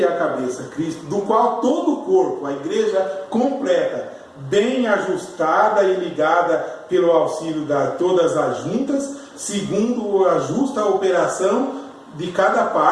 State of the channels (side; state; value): both; identical; correlation 1.00